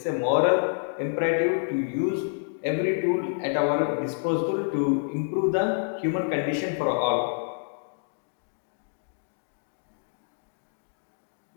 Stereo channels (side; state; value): right; silent; digital silence